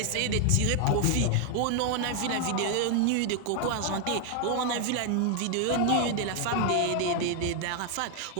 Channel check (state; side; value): different; both; correlation 0.00